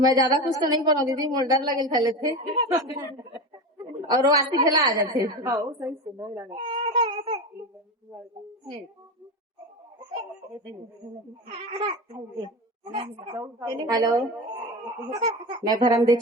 ज्यादा कुछ तो नहीं बोलूँ दीदी, मोर डर लगे खेले थे और वो आती खेला आ जाते। हेलो, मैं धर्मदेव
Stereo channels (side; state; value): both; normal; correlation 0.23